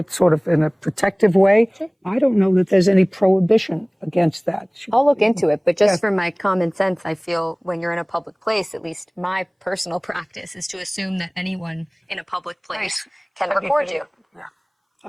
sort of in a protective way. I don't know that there's any prohibition against that. I'll look into it, but just for my common sense, I feel when you're in a public place, at least my personal practice is to assume that anyone in a public place can record you. Yeah. I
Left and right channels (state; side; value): identical; both; correlation 1.00